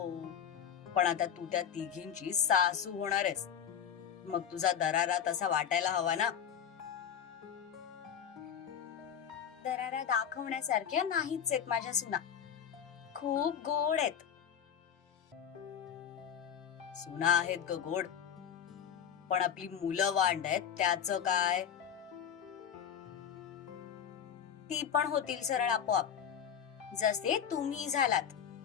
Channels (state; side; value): quieter; right; 8.3 dB